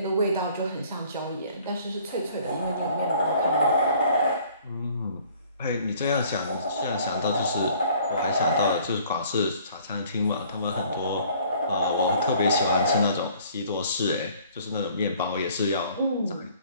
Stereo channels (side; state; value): both; inverted; correlation -0.56